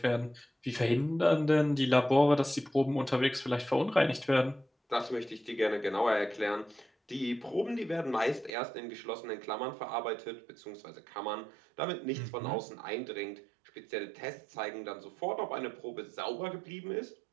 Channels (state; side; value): drops out; left; at 8.5 s